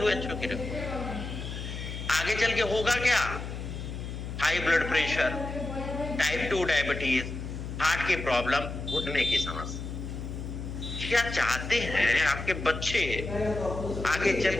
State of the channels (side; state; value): left; noise; hum, 7 dB below the sound